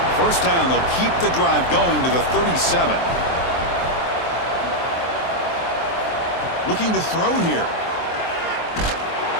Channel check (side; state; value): right; late; 23 ms